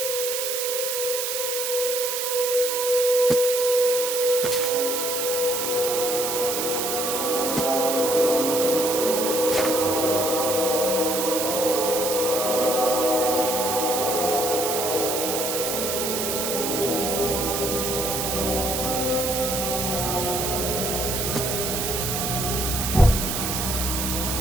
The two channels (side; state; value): right; noise; hiss, 1 dB below the sound